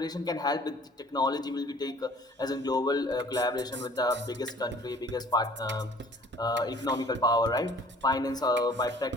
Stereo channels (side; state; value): both; normal; correlation 0.53